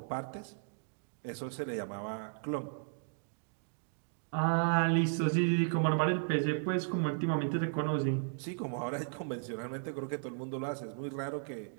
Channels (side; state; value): left; silent; digital silence